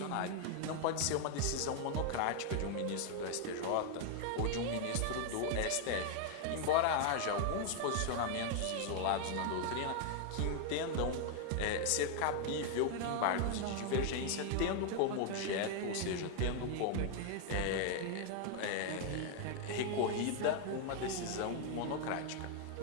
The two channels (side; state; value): both; different; correlation 0.00